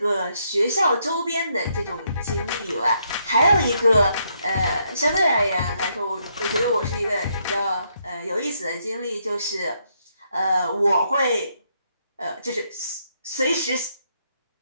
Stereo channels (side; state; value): both; inverted; correlation -0.75